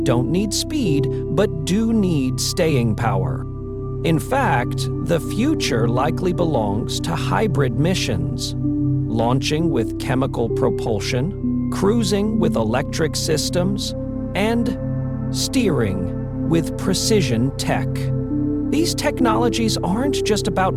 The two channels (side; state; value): both; identical; correlation 1.00